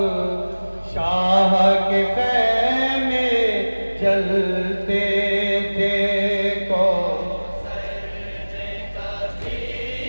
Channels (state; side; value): inverted; both; correlation -1.00